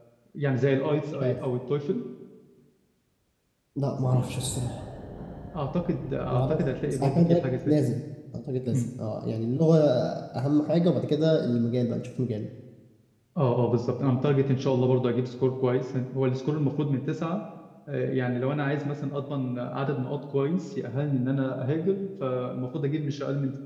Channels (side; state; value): both; identical; correlation 1.00